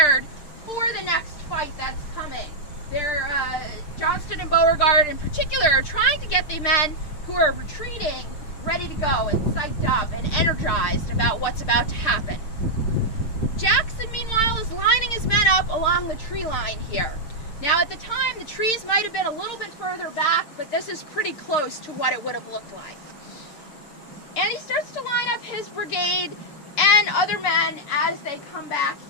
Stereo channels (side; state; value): right; late; 6.7 ms